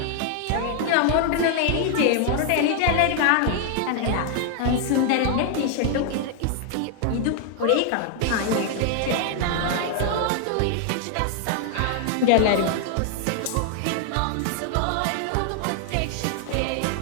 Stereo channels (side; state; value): both; different; correlation 0.00